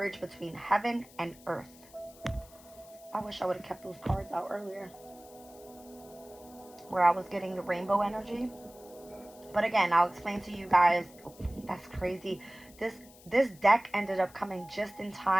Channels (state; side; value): noise; left; hiss, 23 dB below the sound